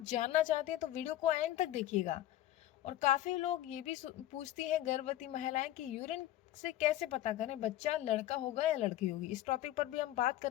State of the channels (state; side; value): quieter; right; 14.1 dB